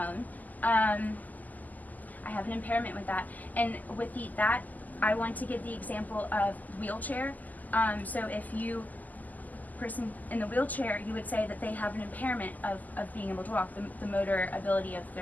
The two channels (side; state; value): right; late; 0.081 ms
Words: I have an impairment with that. And with that, I want to give the example of wheelchair. So if you person in the wheelchair, you would say that they have an impairment of being able to walk, the motor ability of